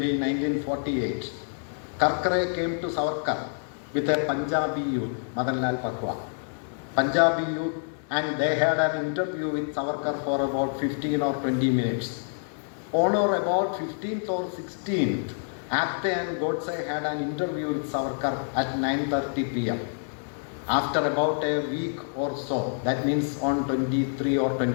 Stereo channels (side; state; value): right; silent; digital silence